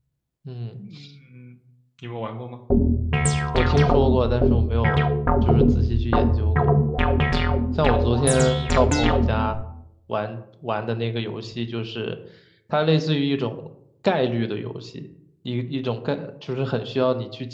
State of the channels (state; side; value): identical; both; correlation 1.00